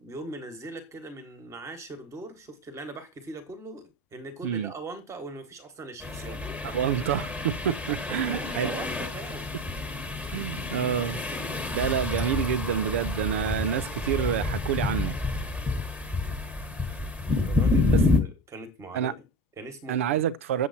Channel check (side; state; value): both; normal; correlation 0.24